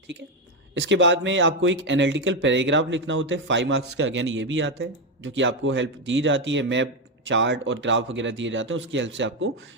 ठीक है। इसके बाद में आपको एक एनालिटिकल पैराग्राफ लिखना होता है 5 मार्क्स का, अगेन ये भी आता है, जो कि आपको हेल्प दी जाती है, मैप चार्ट और ग्राफ वगैरह दिए जाते हैं, उसकी हेल्प से आपको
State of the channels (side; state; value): both; normal; correlation 0.08